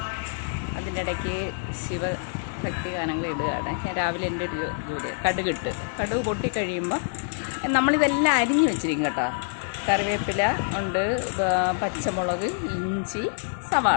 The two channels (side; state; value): right; silent; digital silence